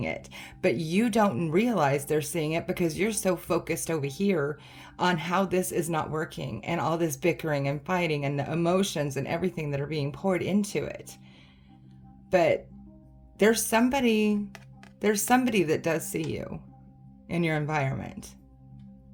it, but you don't realize they're seeing it because you're so focused over here on how this is not working and all this bickering and fighting and the emotions and everything that are being poured into it. But there's somebody that does see you in your environment.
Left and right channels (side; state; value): both; identical; correlation 1.00